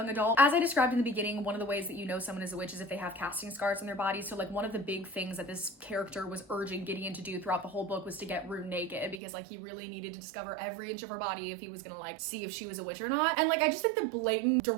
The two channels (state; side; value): drops out; left; at 9.2 s